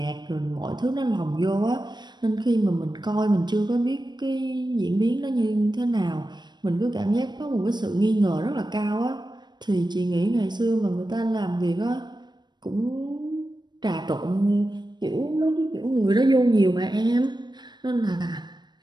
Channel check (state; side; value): late; left; 0.21 ms